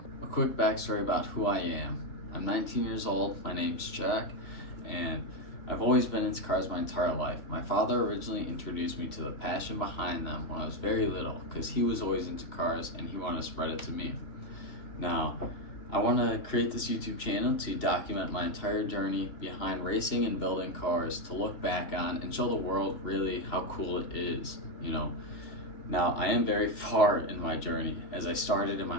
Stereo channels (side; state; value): right; late; 2.7 ms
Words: A quick backstory about who I am. I'm 19 years old, my name's Jack, and I've always been into cars my entire life. My father originally introduced me to the passion behind them when I was very little because he was always into cars and he wanted to spread it to me. Now, I want to create this YouTube channel to document my entire journey behind racing and building cars, to look back on and show the world really how cool it is, Now, I am very far in my journey, as I started in my